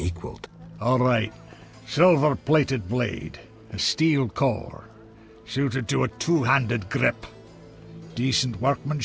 All right. Silver-plated blade. A steel core. Suited to a two-handed grip. Decent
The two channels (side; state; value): both; identical; correlation 1.00